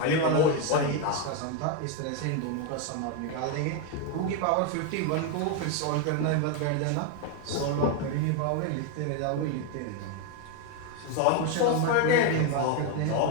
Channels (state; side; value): different; both; correlation 0.01